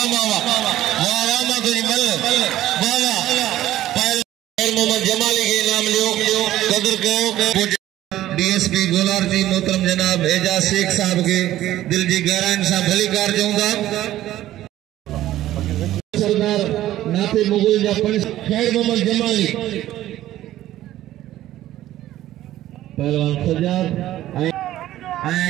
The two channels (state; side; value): quieter; left; 14.0 dB